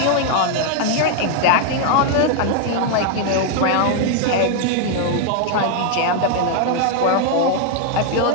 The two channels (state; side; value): different; both; correlation 0.00